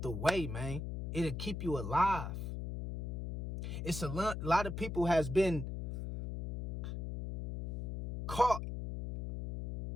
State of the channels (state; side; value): noise; left; hum, 4 dB below the sound